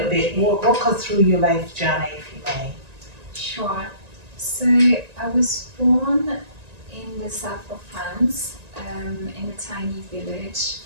bit, walk us through your life journey, if you may. Sure. So I was born in the south of France, in a tiny village,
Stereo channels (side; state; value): left; late; 1.9 ms